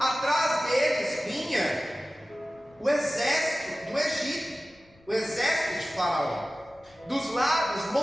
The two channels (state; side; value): noise; left; rumble, 30 dB below the sound